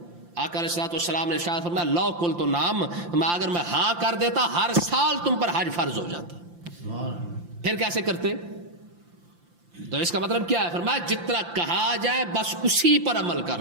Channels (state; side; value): late; left; 5.8 ms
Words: آقا علیہ السلام نے شاید فرمایا لو کل تو نام، اگر میں ہاں کر دیتا ہر سال تم پر حج فرض ہو جاتا. پھر کیسے کرتے؟ تو اس کا مطلب کیا ہے؟ فرمایا جتنا کہا جائے بس اسی پر عمل کر